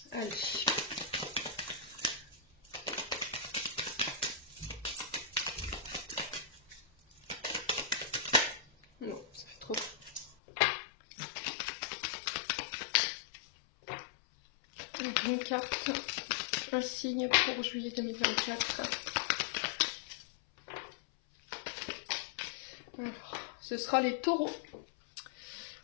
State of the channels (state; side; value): drops out; right; at 10.4 s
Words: Allez. Non, ça fait trop. Donc, une carte, un signe pour juillet 2024. Alors, ce sera les taureaux.